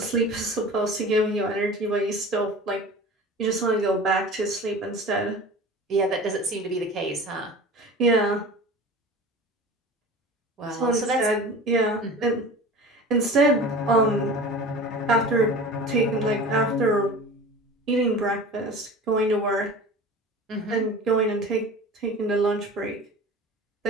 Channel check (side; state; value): both; normal; correlation 0.37